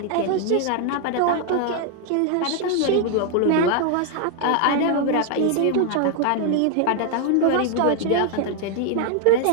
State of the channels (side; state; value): both; different; correlation 0.00